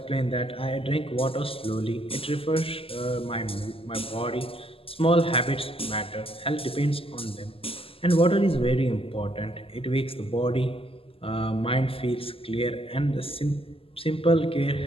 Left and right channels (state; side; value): late; right; 0.27 ms